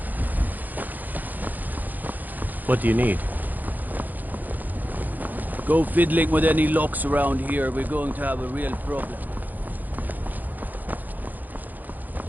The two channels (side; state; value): left; late; 0.084 ms